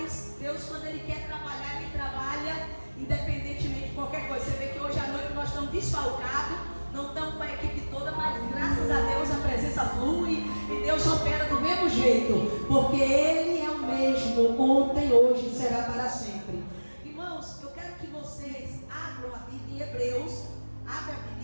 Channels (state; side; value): inverted; both; correlation -1.00